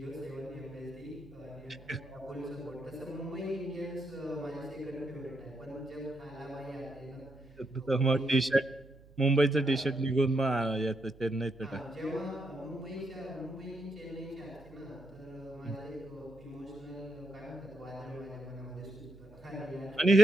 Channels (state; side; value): noise; right; hum, 23 dB below the sound